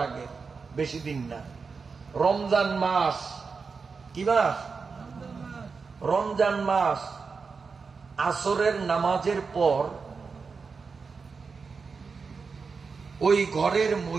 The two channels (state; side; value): quieter; left; 5.0 dB